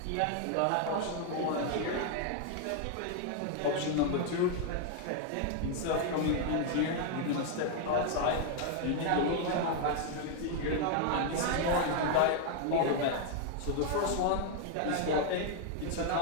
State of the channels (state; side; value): different; both; correlation 0.00